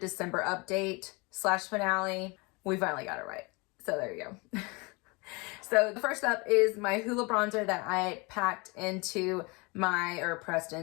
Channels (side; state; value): right; quieter; 27.8 dB